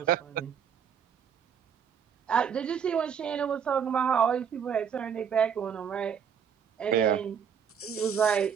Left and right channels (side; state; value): left; quieter; 7.6 dB